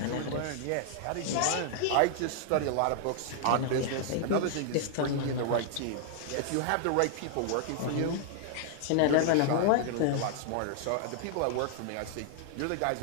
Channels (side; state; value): both; different; correlation 0.00